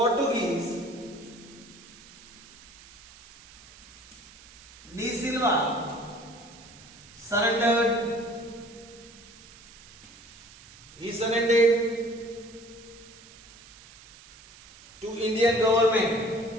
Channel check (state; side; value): noise; right; hiss, 22 dB below the sound